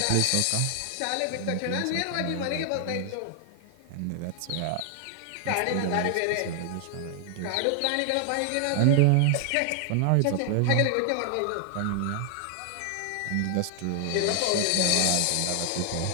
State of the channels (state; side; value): different; both; correlation 0.00